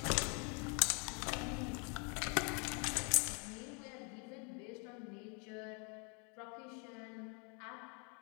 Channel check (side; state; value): right; quieter; 36.1 dB